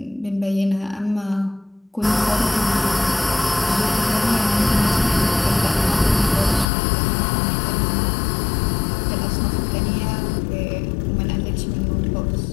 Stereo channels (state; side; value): drops out; right; at 6.7 s